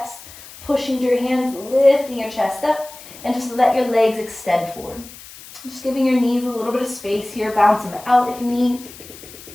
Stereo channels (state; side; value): noise; left; hiss, 18 dB below the sound